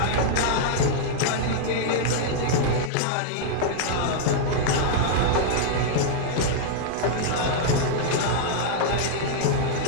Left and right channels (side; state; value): both; different; correlation -0.01